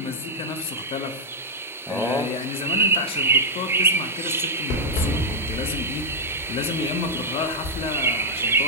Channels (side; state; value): both; normal; correlation -0.05